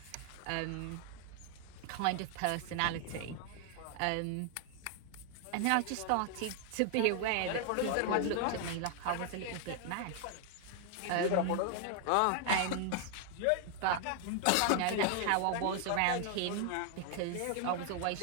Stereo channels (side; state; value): both; different; correlation 0.00